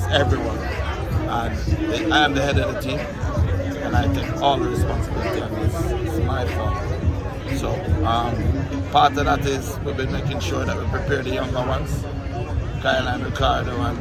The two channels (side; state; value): both; identical; correlation 1.00